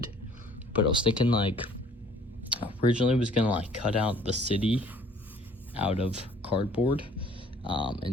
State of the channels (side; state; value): both; normal; correlation 0.56